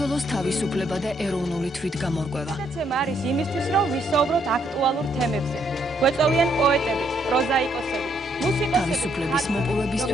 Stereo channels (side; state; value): both; normal; correlation 0.72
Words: თავისუფლება და ეროვნული თვითგამორკვევა გადაცემა არის იმისთვის რომ ვისაუბროთ აქტუალურ თემებზე გვეწოვიან პოეტები პროზაიკოსები მუსიკოსები თავისუფლების